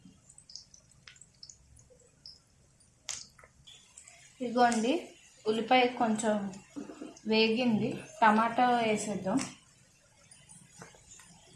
ఇదిగోండి, ఉల్లిపాయ కొంచెం వేగింది, టమాటా వేసేద్దాం.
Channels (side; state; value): both; identical; correlation 1.00